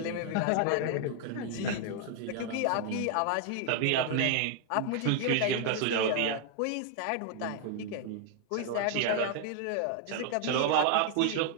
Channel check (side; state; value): both; different; correlation 0.00